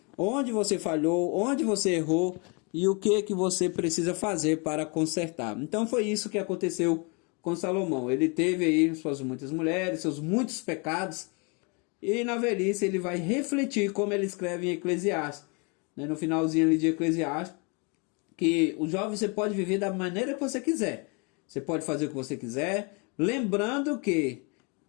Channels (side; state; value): right; quieter; 32.5 dB